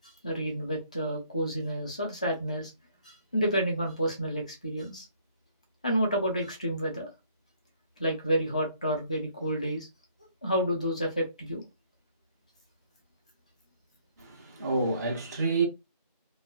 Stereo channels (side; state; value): both; inverted; correlation -0.64